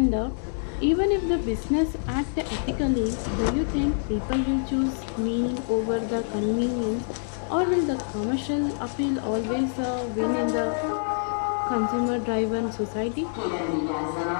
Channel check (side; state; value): right; silent; digital silence